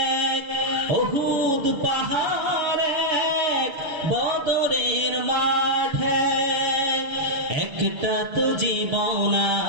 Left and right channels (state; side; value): late; left; 6.8 ms